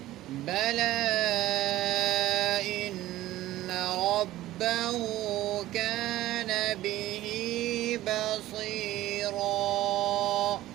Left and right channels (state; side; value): quieter; left; 15.4 dB